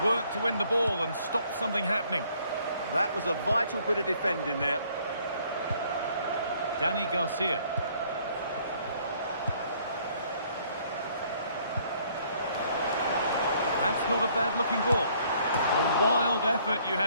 work to win the ball and stop something happening. That was a vital bit of defending there. Dani Garcia. That's not a bad-looking ball. A wild effort, you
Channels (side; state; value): both; inverted; correlation -0.63